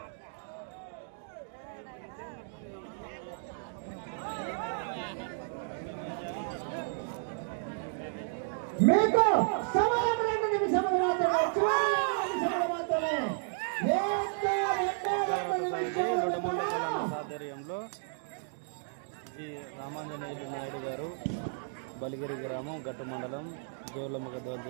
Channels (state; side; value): silent; left; digital silence